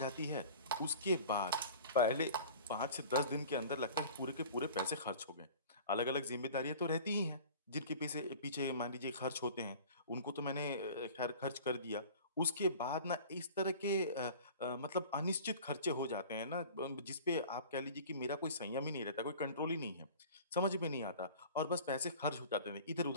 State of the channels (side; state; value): both; inverted; correlation -0.42